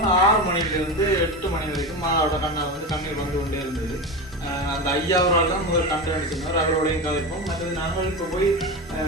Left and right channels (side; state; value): both; normal; correlation 0.22